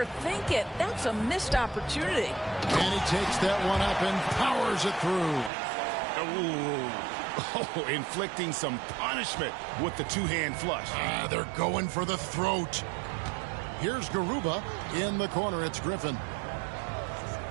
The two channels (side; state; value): left; drops out; at 5.5 s